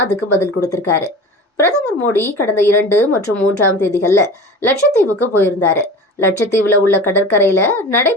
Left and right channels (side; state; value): both; normal; correlation 0.35